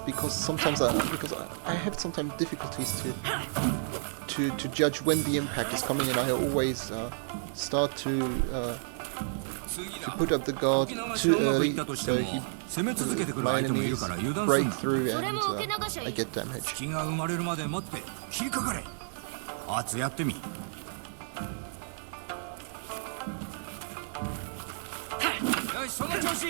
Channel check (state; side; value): silent; left; 57 dB below the other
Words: sometimes I have sometimes difficulties to judge when the impact is coming, and I always start to put up the guard too early, so my enemies break through and I get damage. 隙が生まれるまで待って切りかかれ。アツやってみ。よしその調子。よ